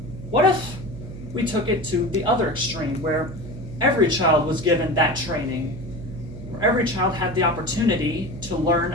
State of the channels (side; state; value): right; noise; hum, 12 dB below the sound